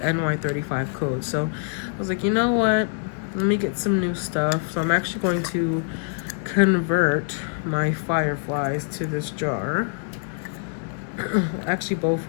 code. So I was like, you know what? Let me get some new stuff. So I'm actually going to convert my fireflies to this jar. Actually, both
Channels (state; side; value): silent; right; digital silence